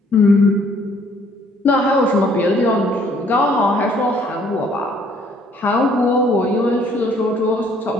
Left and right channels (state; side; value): normal; both; correlation 0.62